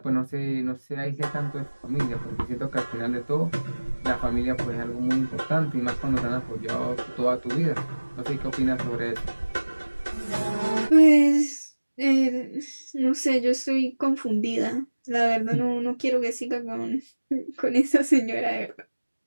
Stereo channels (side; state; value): both; inverted; correlation -1.00